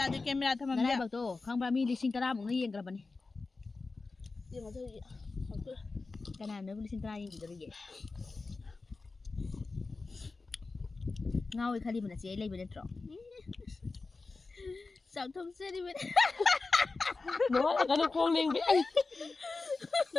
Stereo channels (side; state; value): right; quieter; 3.8 dB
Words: tôi. đi camera thầm Nãy mẹ. bảo tôi không bao mi đi sinh tara một nó yên cái bạn này. nhưng mà thôi Cái nào nó đi sinh tara yên gì rồi vậy? Ngao khai đi mình sẽ lấy bên trong. Sao thông xe đi bên? Nói là cái nó con liền biết anh.